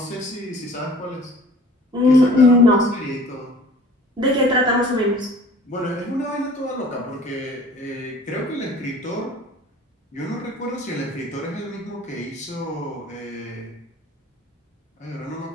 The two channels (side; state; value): both; normal; correlation 0.48